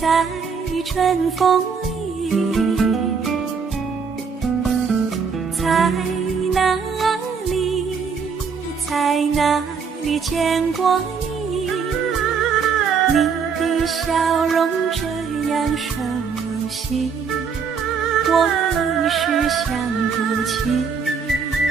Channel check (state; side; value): quieter; left; 5.9 dB